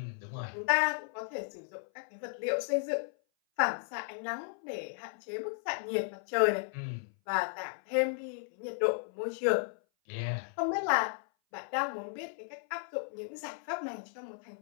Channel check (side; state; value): right; silent; 55 dB below the other